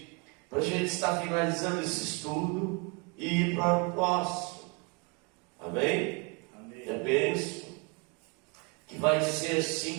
para a gente estar finalizando esse estudo e ir para o próximo. Amém? Amém. É bênção. Que vai dizer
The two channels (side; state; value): left; quieter; 31.8 dB